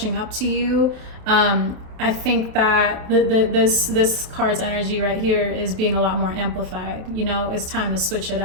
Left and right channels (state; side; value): late; left; 28 ms